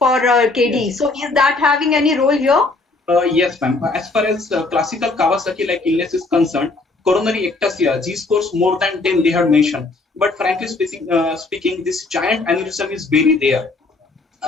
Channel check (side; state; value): right; quieter; 3.4 dB